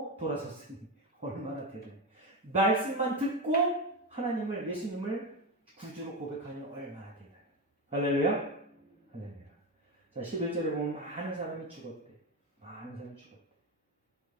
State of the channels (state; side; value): normal; both; correlation 0.17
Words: 돌아섰으니 얼마나 대단해. 말씀만 듣고 하나님을, 예수님을 구주로 고백하니 얼마나 대단해. 할렐루야? 할렐루야. 자, 11절에 보면 많은 사람이 죽었대. 많은 사람이 죽었대.